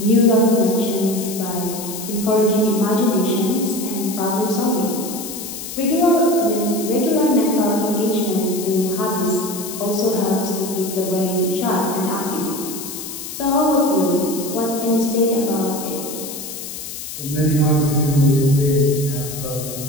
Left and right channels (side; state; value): left; noise; hiss, 9 dB below the sound